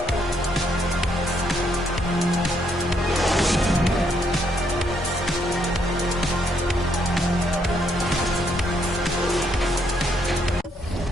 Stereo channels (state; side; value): normal; both; correlation 0.73